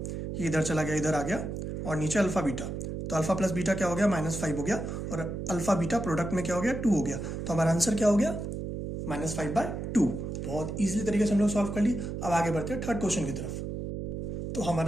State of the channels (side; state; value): right; noise; hum, 5 dB below the sound